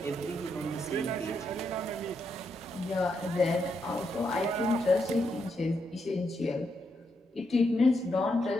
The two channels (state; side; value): normal; both; correlation 0.80